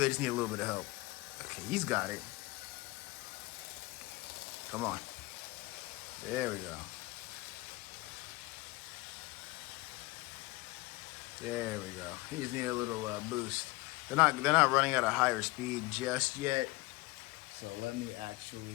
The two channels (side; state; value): right; quieter; 21.9 dB